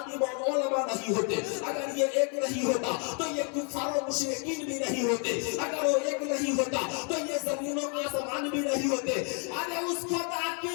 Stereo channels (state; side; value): quieter; right; 39.1 dB